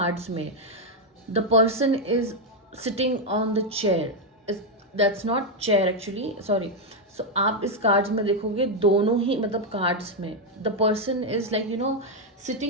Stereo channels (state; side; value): normal; both; correlation 0.02